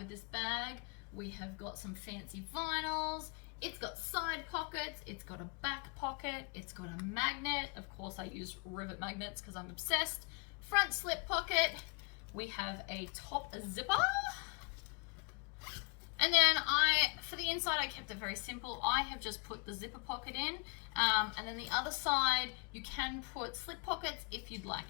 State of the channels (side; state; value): right; quieter; 32.9 dB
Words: this bag. We have got some fancy vinyls. It's got side pockets, it's got a back pocket, it's got a magnet. Of course I use rivet magnets because I'm obsessed. Front slip pocket. We have a top zipper. And then for the inside, I kept it very simple. I have just put the zipper pocket in, and then the other side, you can put slip pockets if you'd